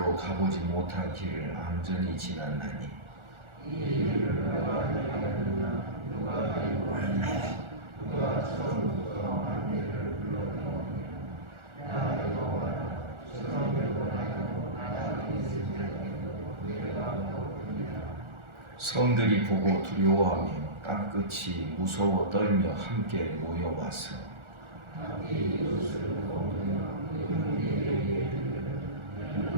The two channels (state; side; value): late; left; 1.4 ms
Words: 가보지 못한 길을 안전히 지났나니 성들이 보고 두려워하며 땅끝이 무서워 떨며 함께 모여와서